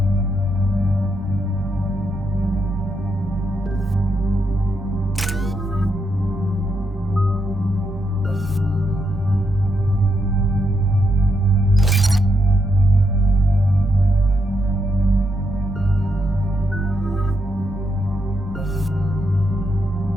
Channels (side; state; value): both; normal; correlation 0.80